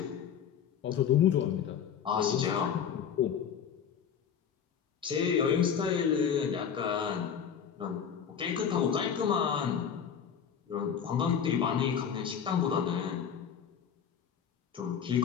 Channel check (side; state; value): right; quieter; 7.8 dB